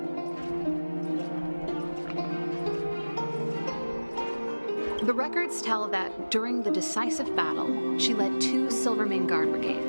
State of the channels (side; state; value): both; inverted; correlation -1.00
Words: The records tell that during the decisive battle, she led 2 Silvermane Guard